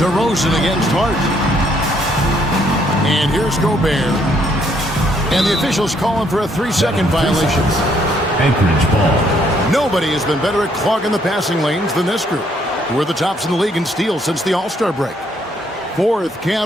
against Hart. And here's Gobert. And the officials calling for a 3-second violation. Anchorage ball. Nobody has been better at clogging the passing lanes than this group. We're the tops in the league in steals since the All-Star break. 4th,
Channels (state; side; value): normal; both; correlation 0.69